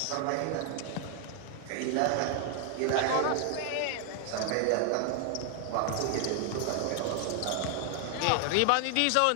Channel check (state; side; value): different; both; correlation 0.00